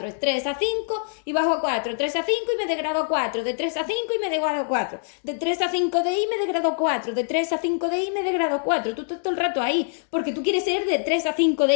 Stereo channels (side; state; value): right; silent; digital silence